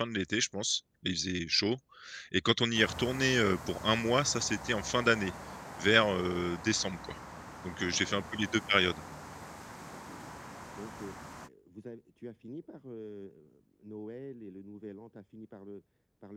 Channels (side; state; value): both; identical; correlation 1.00